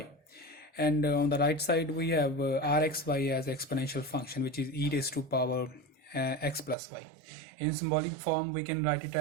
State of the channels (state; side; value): drops out; left; at 6.8 s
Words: And on the right side we have rxy as exponential function, which is e raised to power x plus y. In symbolic form we can write it